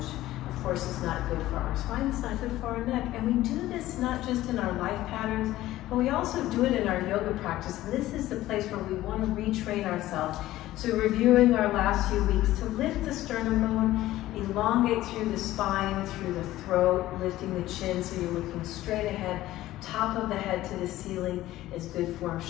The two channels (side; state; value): right; quieter; 15.4 dB